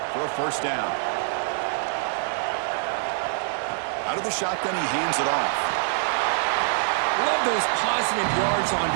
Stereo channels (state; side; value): silent; left; digital silence